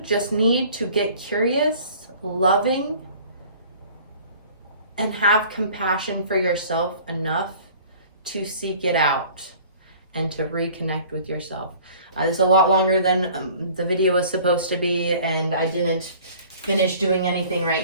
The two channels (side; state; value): both; inverted; correlation -0.49